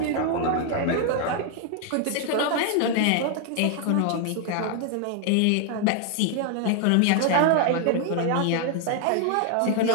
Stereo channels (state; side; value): different; both; correlation 0.00